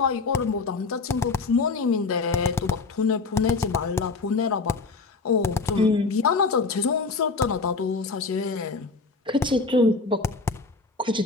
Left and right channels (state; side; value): quieter; right; 4.2 dB